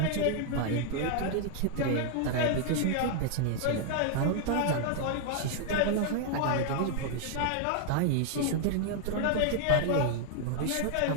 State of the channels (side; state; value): both; different; correlation 0.00